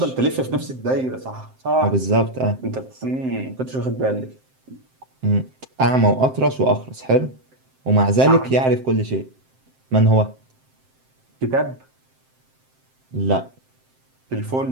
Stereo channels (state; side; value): late; left; 7.7 ms